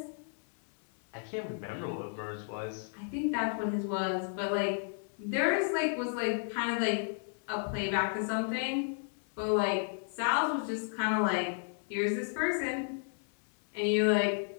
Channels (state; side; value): silent; right; 56 dB below the other